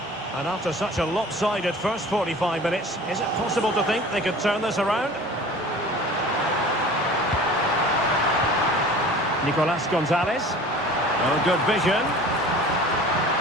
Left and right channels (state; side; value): normal; both; correlation 0.43